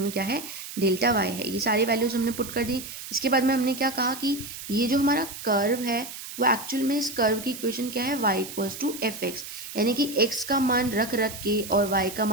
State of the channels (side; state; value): right; noise; hiss, 11 dB below the sound